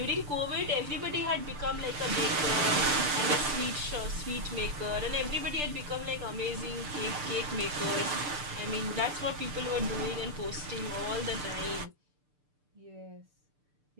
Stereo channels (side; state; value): left; late; 6.8 ms